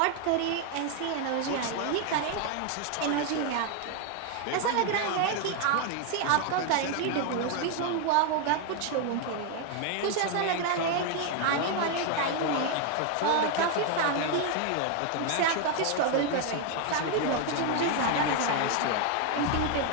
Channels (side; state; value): both; different; correlation 0.01